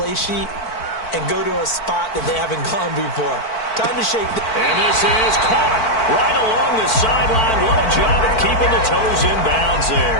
sheet and go to a spot that they haven't gone before. Time to shake. And this is caught right along the sideline. What a job of keeping the toes in bounds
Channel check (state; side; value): late; right; 4.5 ms